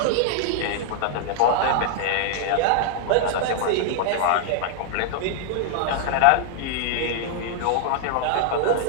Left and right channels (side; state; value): both; different; correlation -0.01